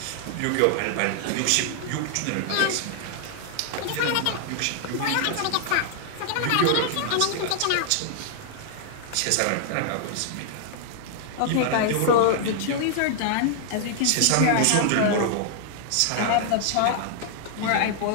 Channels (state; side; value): different; both; correlation 0.00